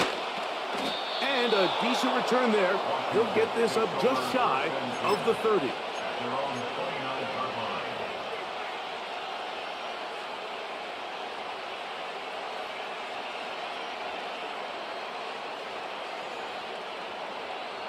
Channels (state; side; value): identical; both; correlation 1.00